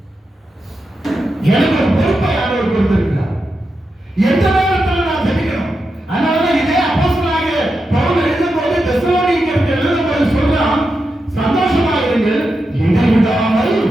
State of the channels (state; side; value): normal; both; correlation 0.88